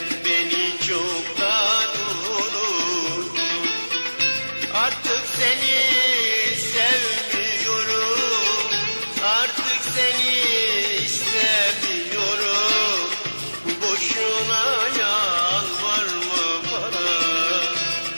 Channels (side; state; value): both; inverted; correlation -1.00